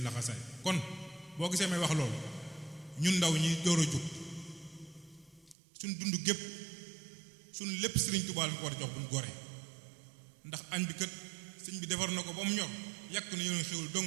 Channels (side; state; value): left; drops out; at 5.6 s